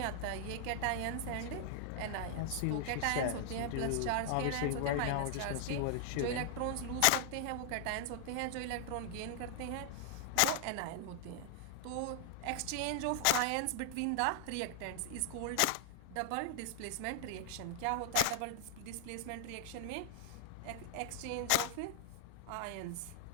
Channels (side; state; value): both; different; correlation -0.01